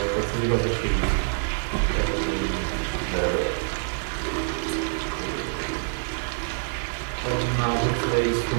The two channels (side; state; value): left; silent; 61 dB below the other